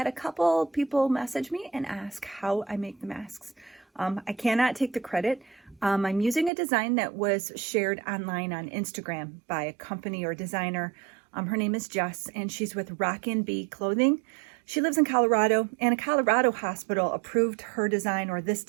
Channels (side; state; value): left; drops out; at 6.5 s